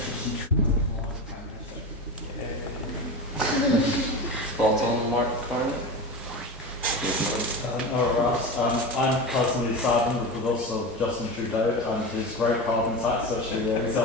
Prime Minister. Thoughts on Mark Carney? I'm personally saddened with the loss of Justin Trudeau and his great carbon tax, actually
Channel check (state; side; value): normal; both; correlation 0.24